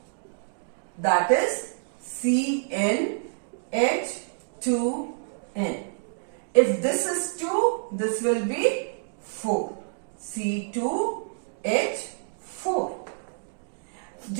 that is CnH2n. If this is 2, this will be 4. C2H4.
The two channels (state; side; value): silent; left; digital silence